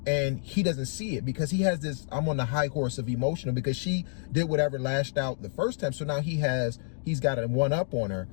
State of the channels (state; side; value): silent; right; digital silence